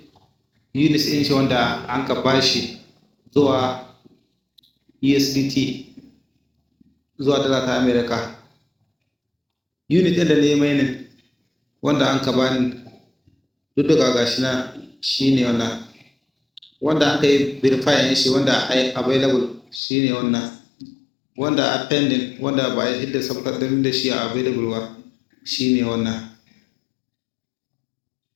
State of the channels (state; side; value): drops out; right; at 19.8 s